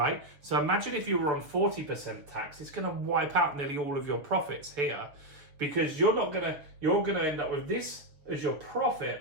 So imagine if you were on 40% tax, it's going to wipe out nearly all of your profits here, because you're going to end up with this as your profit,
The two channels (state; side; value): late; left; 6.6 ms